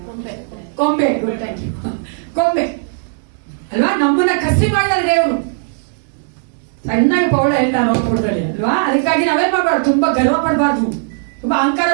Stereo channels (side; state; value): left; silent; digital silence